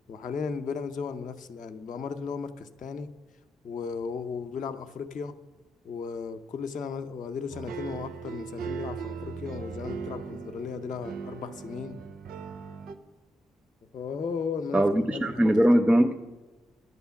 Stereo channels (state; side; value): normal; both; correlation 0.88